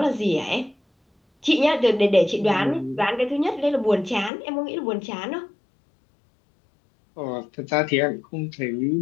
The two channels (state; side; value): drops out; right; at 4.3 s